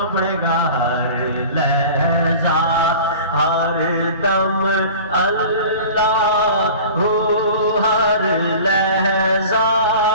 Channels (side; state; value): both; inverted; correlation -0.39